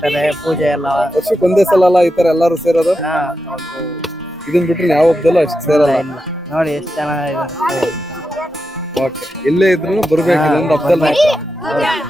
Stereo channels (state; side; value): normal; both; correlation 0.88